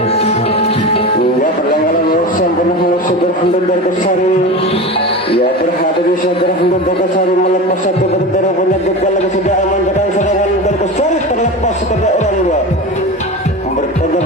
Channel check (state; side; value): normal; both; correlation 0.27